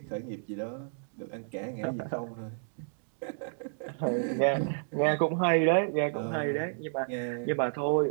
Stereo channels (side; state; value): left; silent; digital silence